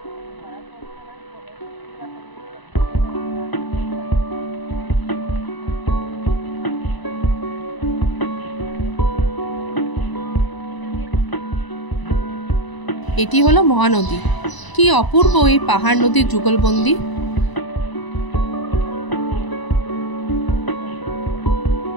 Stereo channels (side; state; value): right; late; 1.0 ms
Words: এটি হলো মহানদী। কি অপূর্ব এই পাহাড় নদীর যুগলবন্দি।